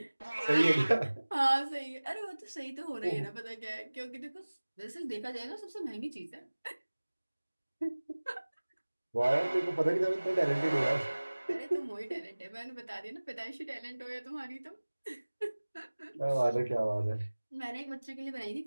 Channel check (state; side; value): inverted; both; correlation -1.00